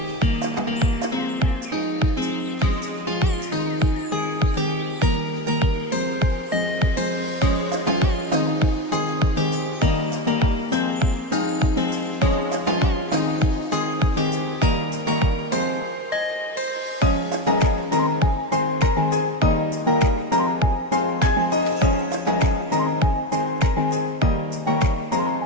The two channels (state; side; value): late; left; 1.3 ms